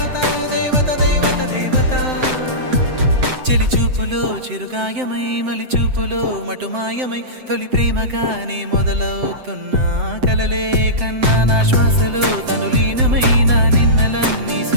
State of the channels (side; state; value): left; late; 7.8 ms